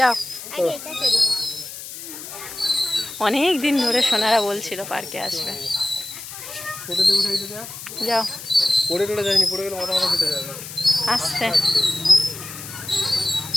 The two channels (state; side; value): noise; left; hiss, 11 dB below the sound